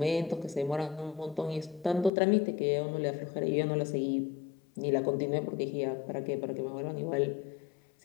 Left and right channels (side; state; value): right; drops out; at 2.1 s